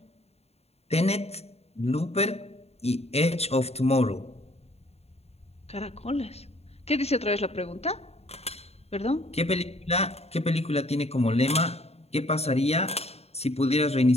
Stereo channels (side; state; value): right; late; 0.30 ms